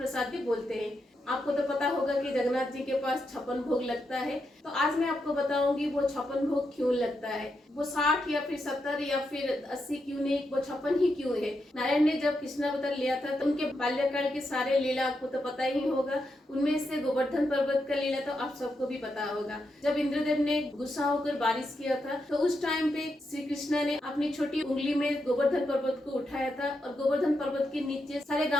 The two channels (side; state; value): both; normal; correlation 0.84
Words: भी बोलते हैं। आपको तो पता होगा कि जगन्नाथ जी के पास 56 भोग लगता है। तो आज मैं आपको बताऊंगी वो 56 भोग क्यों लगता है, वो 60 या फिर 70 या फिर 80 क्यों नहीं, वो 56 ही क्यों है। नारायण ने जब कृष्णावतार लिया था तो उनके बाल्यकाल के सारे लीला आपको तो पता ही होगा। उनमें से गोवर्धन पर्वत का लीला तो आप सबको भी पता होगा। जब इंद्रदेव ने गुस्सा होकर बारिश किया था तो उस टाइम पे श्री कृष्ण ने अपनी छोटी उंगली में गोवर्धन पर्वत को उठाया था और गोवर्धन पर्वत के नीचे सारे